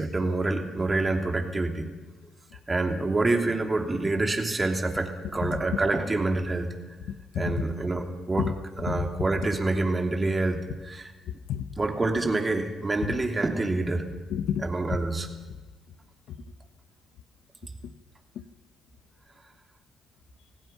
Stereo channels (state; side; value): normal; both; correlation 0.89